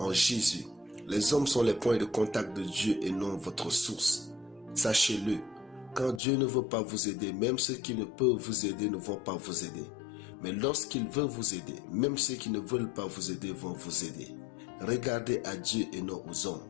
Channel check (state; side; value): drops out; right; at 6.2 s